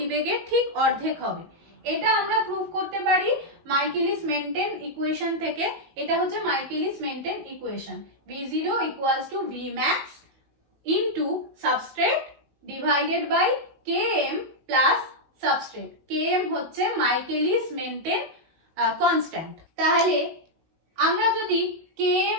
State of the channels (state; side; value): late; left; 19 ms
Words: ঠিক অর্ধেক হবে। এটা আমরা প্রুভ করতে পারি মাইকেলিস মেন্টেন ইকুয়েশন থেকে। এটা হচ্ছে Michaelis maintain equation, V0 equals to Vmax into substrate divided by Km plus substrate. Km হচ্ছে মাইকেলিস মেন্টেন কনস্ট্যান্ট। তাহলে আমরা যদি